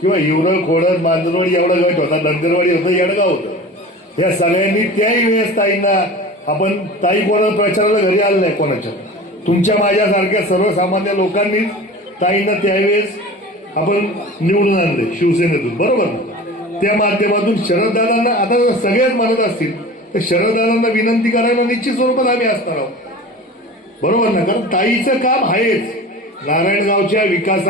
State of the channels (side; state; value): both; normal; correlation 0.37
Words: किंवा हिवरं खोडद मांजरवाडी एवढा गट होता, नंदरवाडी होतं, येडगाव होतं. या सगळ्यांनी त्याही वेळेस ताईंना आपण ताई कोणा प्रचाराला घरी आलं नाही कोणाच्या. तुमच्या माझ्यासारख्या सर्वसामान्य लोकांनीच ताईंना त्यावेळेस आपण निवडून आणले शिवसेनेतून, बरोबर. त्या माध्यमातून शरददादांना आता सगळेच म्हणत असतील तर शरददादांना विनंती करायला निश्चित स्वरूपात आम्ही असणार आहोत, बरोबर ना. कारण ताईचं काम आहेच. नारायणगावच्या